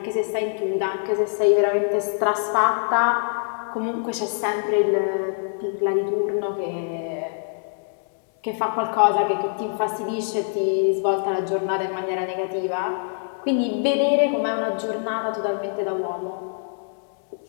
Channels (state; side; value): silent; right; digital silence